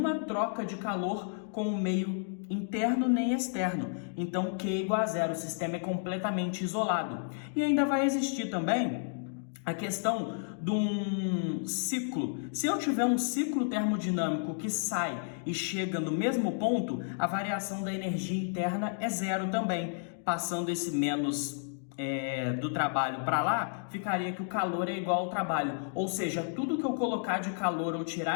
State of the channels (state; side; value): silent; right; digital silence